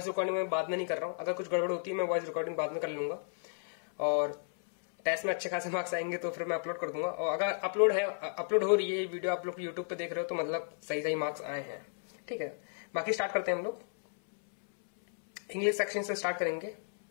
रिकॉर्डिंग में बाद में नहीं कर रहा हूँ। अगर कुछ गड़बड़ होती है मैं वॉइस रिकॉर्डिंग बाद में कर लूंगा और टेस्ट में अच्छे खासे मार्क्स आएंगे तो फिर मैं अपलोड कर दूंगा। और अगर अपलोड हो रही है वीडियो, आप लोग यूट्यूब पे देख रहे हो, तो मतलब सही मार्क्स आए हैं। ठीक है, बाकी स्टार्ट करते हैं हम लोग। इंग्लिश सेक्शन से स्टार्ट करेंगे।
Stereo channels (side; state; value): right; silent; 56 dB below the other